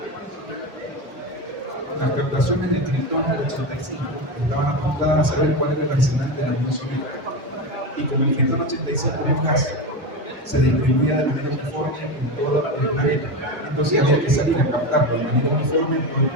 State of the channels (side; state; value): both; normal; correlation 0.19